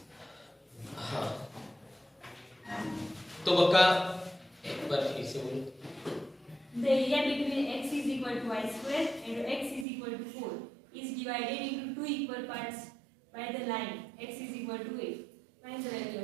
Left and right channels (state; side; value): drops out; left; at 9.9 s